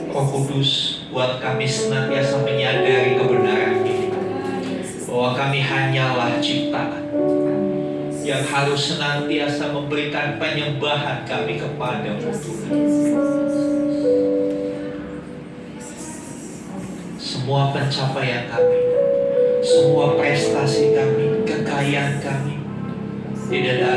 Roh Kudus, buat kami senantiasa menyadari kebenaran ini, bahwa kami hanyalah ciptaan yang harus senantiasa memberikan penyembahan kami kepada-Mu Tuhan. Semua pencapaian kami, semua prestasi kami, kekayaan kami, tidak ada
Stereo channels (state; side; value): identical; both; correlation 1.00